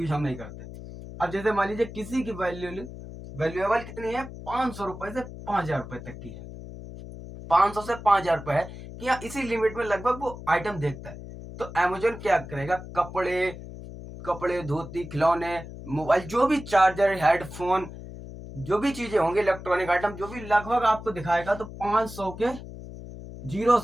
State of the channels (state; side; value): noise; left; hum, 12 dB below the sound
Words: हम नहीं करते। अब जैसे मान लीजिए किसी की वैल्यूएबल कितनी है, 500 रुपए से 5,000 रुपए तक की है। 500 से 5,000 रुपए है कि हाँ, इसी लिमिट में लगभग वो आइटम देखता है। तो अमेजोन क्या करेगा, कपड़े धोती खिलौने मोबाइल, जो भी चार्जर हेडफोन, जो भी चीजें होंगी इलेक्ट्रॉनिक आइटम, जो भी लगभग आपको दिखाएगा। तो 500 के जीरो